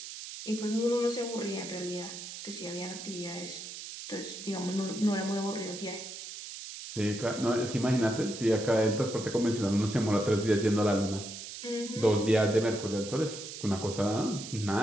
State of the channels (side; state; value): right; noise; hiss, 10 dB below the sound